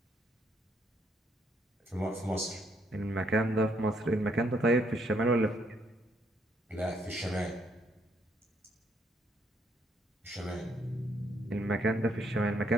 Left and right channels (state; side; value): normal; both; correlation 0.72